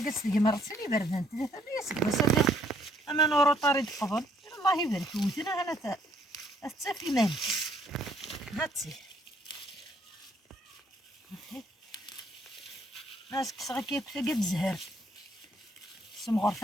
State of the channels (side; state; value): both; normal; correlation 0.66